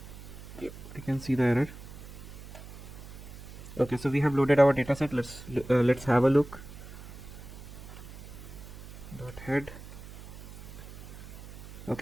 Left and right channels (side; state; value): right; noise; hum, 14 dB below the sound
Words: Yep, I can see the error. Okay, so we have loaded our dataset. Let's have a look. .head.